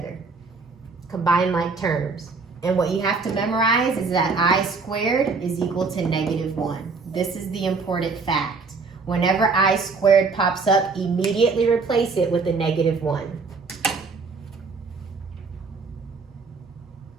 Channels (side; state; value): left; quieter; 4.4 dB